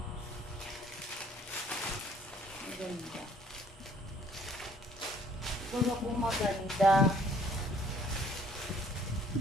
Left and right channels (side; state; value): both; normal; correlation 0.60